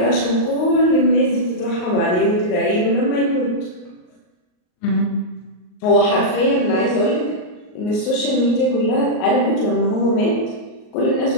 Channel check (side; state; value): right; late; 38 ms